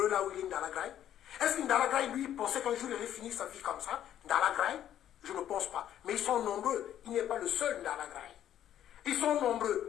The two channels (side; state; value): right; quieter; 11.1 dB